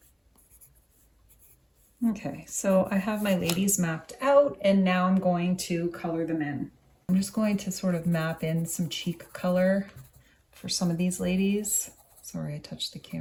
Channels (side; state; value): both; identical; correlation 1.00